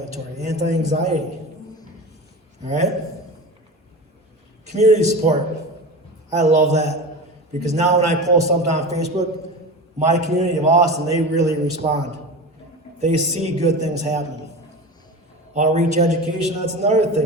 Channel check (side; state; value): both; normal; correlation 0.29